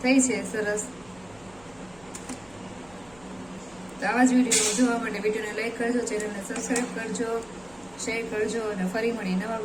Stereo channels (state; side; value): noise; right; hum, 25 dB below the sound